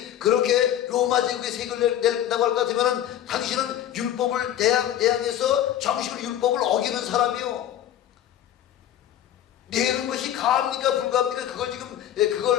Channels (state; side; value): quieter; right; 11.4 dB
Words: 그렇게 로마 제국의 세금을 낸다고 할 것 같으면 당신은 율법을 대항해서 정식으로 율법을 어기는 사람이요. 내는 것이 가합니까 불가합니까? 그걸 지금